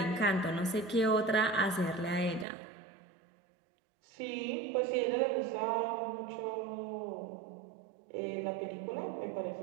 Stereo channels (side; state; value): left; drops out; at 2.5 s